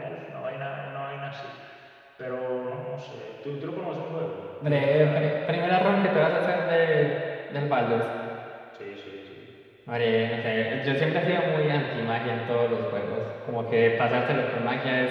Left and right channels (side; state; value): both; identical; correlation 1.00